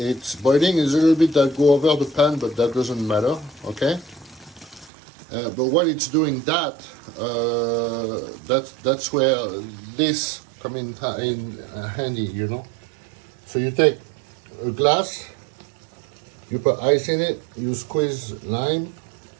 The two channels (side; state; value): left; drops out; at 4.9 s